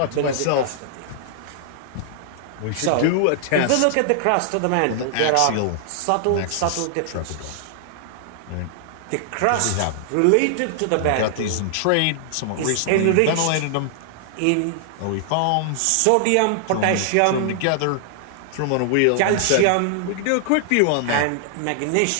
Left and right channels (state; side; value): different; both; correlation 0.00